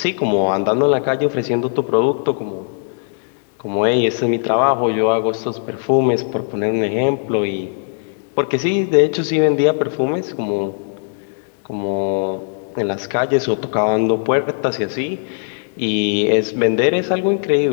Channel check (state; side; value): silent; right; digital silence